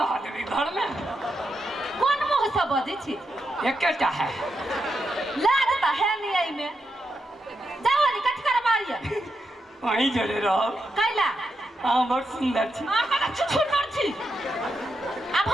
रह देबी घर में कोन मुंह से बजै छी एकेटा है लाज त है नहीं आई में जाओ नि कथि करबा वहीं जड़े रहो। कैला हाँ बहुत सुंदर छी। छुछुनर छी। अब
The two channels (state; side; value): normal; both; correlation 0.84